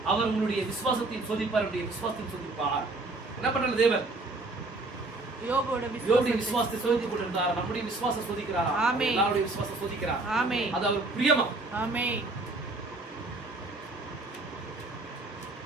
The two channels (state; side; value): quieter; left; 3.1 dB